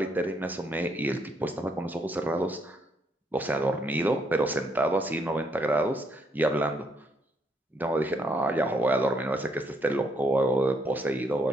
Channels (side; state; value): both; normal; correlation 0.73